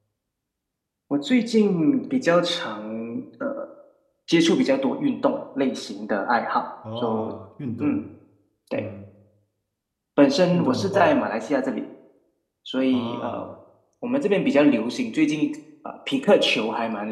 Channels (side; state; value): both; identical; correlation 1.00